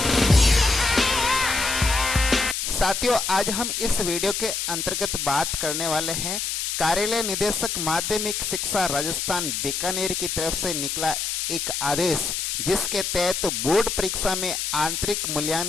साथियों आज हम इस वीडियो के अंतर्गत बात करने वाले हैं कार्यालय निदेशक माध्यमिक शिक्षा राजस्थान बीकानेर की तरफ से निकला एक आदेश, जिसके तहत बोर्ड परीक्षा में आंतरिक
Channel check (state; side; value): noise; left; hiss, 2 dB below the sound